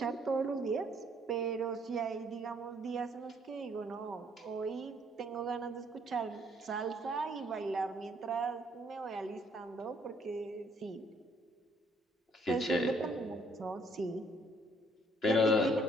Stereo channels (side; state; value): both; normal; correlation 0.65